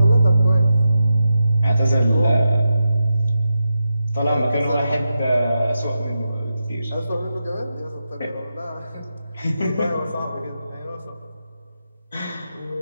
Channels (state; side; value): inverted; both; correlation -0.88